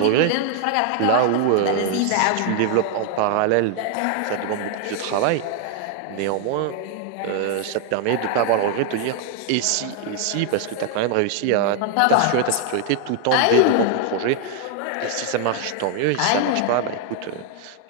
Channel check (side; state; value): both; different; correlation 0.00